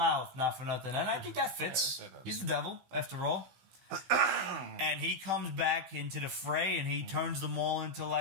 not for nothing, and I think that fits. He's the devil, after all. And he comes back into the fray, and he turns them all into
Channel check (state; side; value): late; left; 16 ms